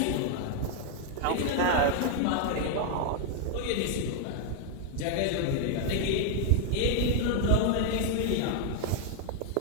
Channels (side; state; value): both; different; correlation 0.00